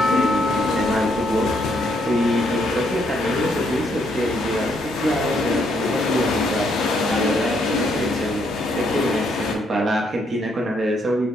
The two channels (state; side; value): normal; both; correlation 0.73